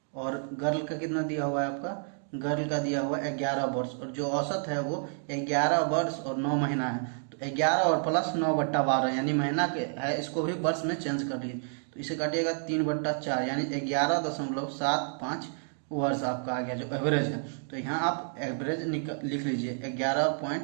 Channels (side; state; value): left; silent; 58 dB below the other